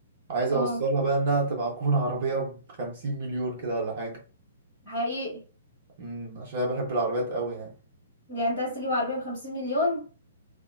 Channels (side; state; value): both; inverted; correlation -0.44